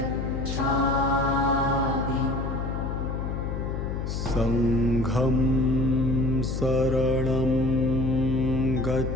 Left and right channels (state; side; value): noise; left; hum, 3 dB below the sound